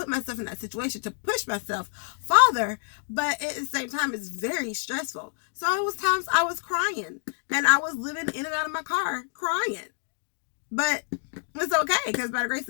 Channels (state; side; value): silent; right; digital silence